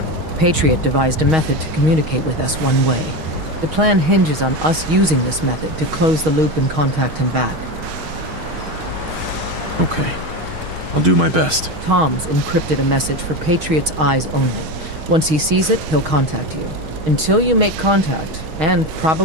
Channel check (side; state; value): left; late; 6.4 ms